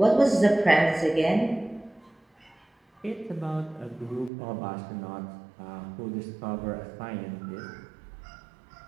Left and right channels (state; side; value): drops out; left; at 4.3 s